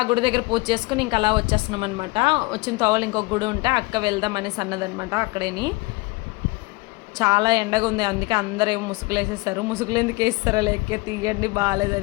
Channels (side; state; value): right; quieter; 24.4 dB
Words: గుడి దగ్గర పూజ చేసుకుని ఇంకా అలా వచ్చేస్తున్నాం అనమాట. వచ్చిన తోవలు ఇంకొక గుడి ఉంటే అక్క వెళ్దాం అనేసి అన్నదనమాట. అక్కడేని చాలా ఎండగా ఉంది, అందుకే అందరూ ఏమో ముసుగులు వేసేస్తారు. ముసుగులు ఎందుకు వేస్తారో లేక తీయండి